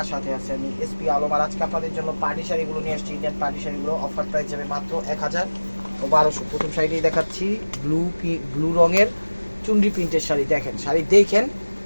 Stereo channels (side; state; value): both; inverted; correlation -1.00